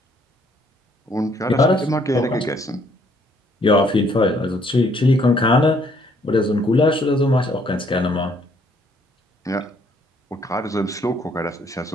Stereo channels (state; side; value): normal; both; correlation 0.66